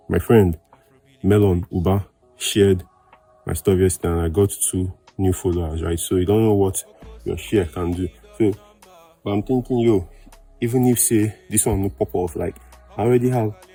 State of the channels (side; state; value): both; identical; correlation 1.00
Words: my friend, Melon Uba, shared my stuff yesterday and I got 2 new followers, right? So you don't know what your share can do. So, but I'm thinking, yo, even if say this one will pop off, like I already have